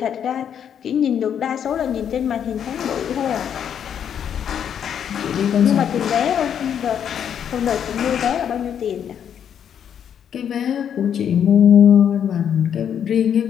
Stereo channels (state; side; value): quieter; right; 8.7 dB